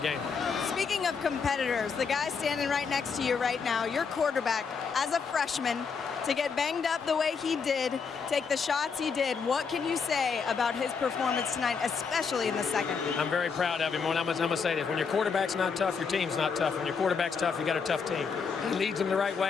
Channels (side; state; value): right; quieter; 5.7 dB